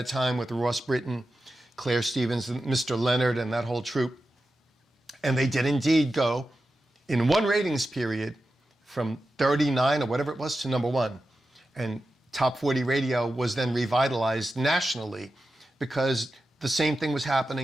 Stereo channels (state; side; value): normal; both; correlation 0.92